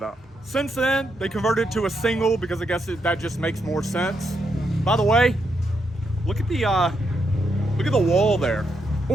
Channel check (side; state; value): both; normal; correlation 0.80